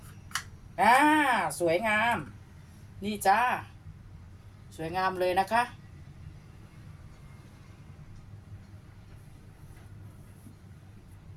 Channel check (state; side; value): identical; both; correlation 1.00